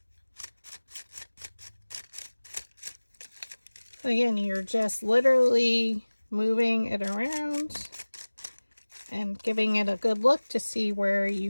Again, you're just literally moving it around and giving it a good look to see where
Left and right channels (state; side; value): inverted; both; correlation -1.00